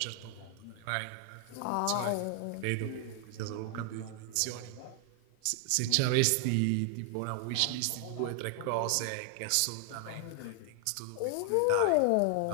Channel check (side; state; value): both; different; correlation 0.00